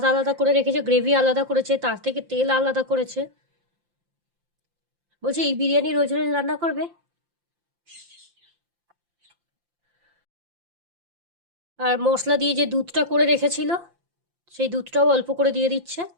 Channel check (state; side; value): late; left; 5.8 ms